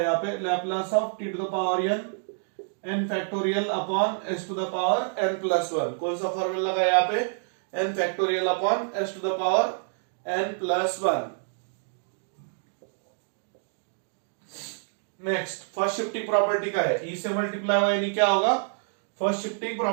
पे, Laplace of t to the power n factorial upon s to the power n plus 1। कौन सा फॉर्मूला लगा यहाँ पे, n factorial upon s to the power n plus 1। Next first shifting property का है, e से मल्टीप्लाई हुआ यानी क्या होगा, फर्स्ट शिफ्टिंग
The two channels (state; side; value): silent; left; digital silence